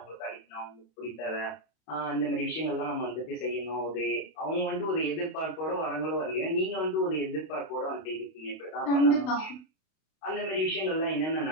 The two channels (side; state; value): right; late; 32 ms